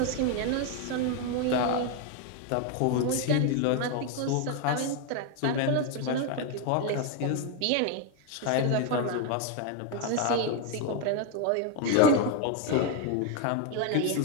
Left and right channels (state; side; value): different; both; correlation 0.01